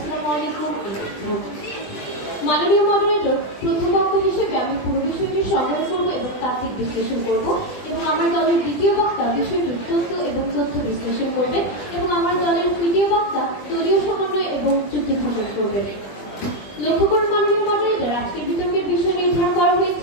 আলাইকুম। মাননীয় মডারেটর, প্রথম বক্তা হিসেবে আমি পুরো বিষয়টি সংগ্রহ করবো এবং তাত্ত্বিক বিশ্লেষণ করব, এবং আমার দলের দ্বিতীয় বক্তা বিষয়টির তথ্য বিশ্লেষণ করবেন, এবং আমার দলের তৃতীয় বক্তা দলীয় সমন্বয় এবং চুক্তি স্থাপন করবেন। লক্ষ্য করুন মাননীয় মডারেটর, আজকের বিতর্কের বিষয় নির্ধারণ করা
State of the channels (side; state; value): right; late; 20 ms